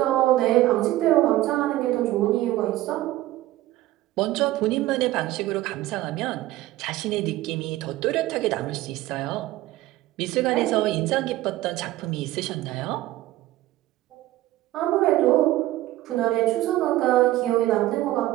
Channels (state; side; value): quieter; left; 16.1 dB